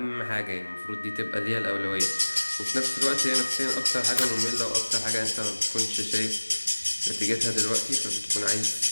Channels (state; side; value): inverted; both; correlation -1.00